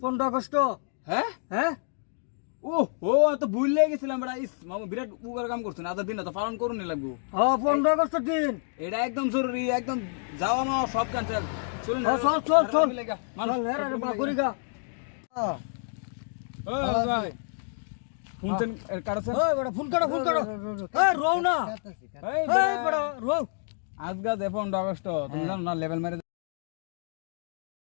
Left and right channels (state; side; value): silent; right; 59 dB below the other